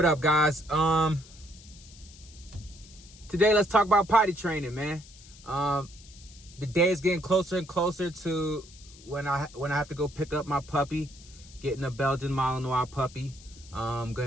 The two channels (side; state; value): left; noise; hiss, 21 dB below the sound